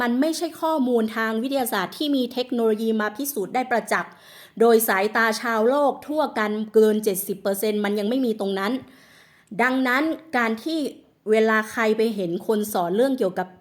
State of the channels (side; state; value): both; identical; correlation 1.00